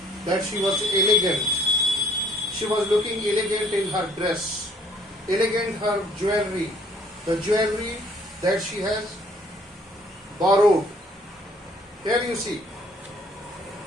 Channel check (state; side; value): normal; both; correlation 0.59